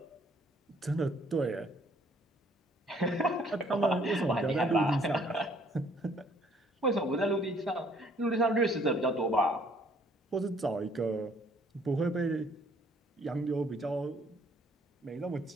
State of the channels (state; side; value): normal; both; correlation 0.62